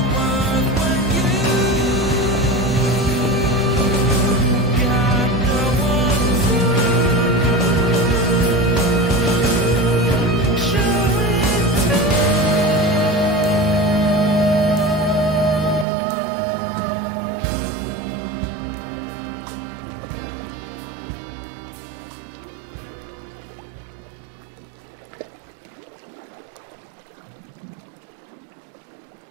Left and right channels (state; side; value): drops out; left; at 15.9 s